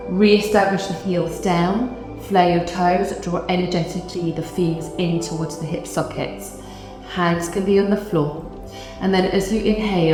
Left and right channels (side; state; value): both; identical; correlation 1.00